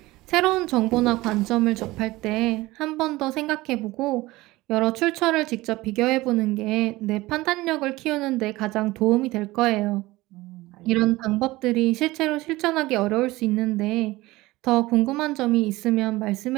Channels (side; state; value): left; quieter; 19.4 dB